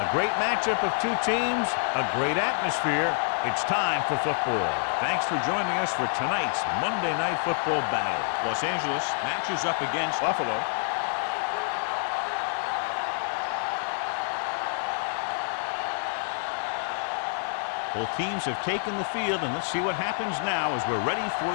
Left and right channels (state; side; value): silent; right; digital silence